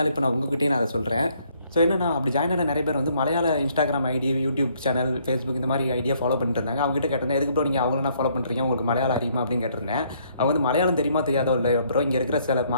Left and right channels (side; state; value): both; inverted; correlation -0.67